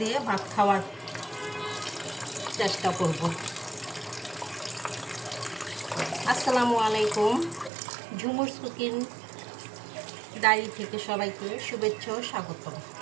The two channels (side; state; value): left; drops out; at 7.7 s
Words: ভাত খাওয়ার চেষ্টা করব। আসসালামু আলাইকুম। ঝুমুরস কুকিং ডায়েরি থেকে সবাইকে শুভেচ্ছা ও স্বাগতম।